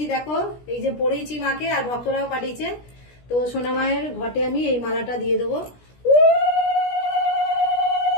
দেখো এই যে পড়েছি মাকে, আর ভক্তরাও পাঠিয়েছে। তো সোনামায়ের ঘটে আমি এই মালাটা দিয়ে দেবো।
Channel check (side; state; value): right; late; 17 ms